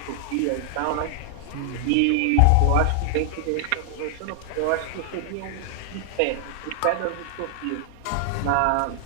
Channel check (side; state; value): both; different; correlation 0.00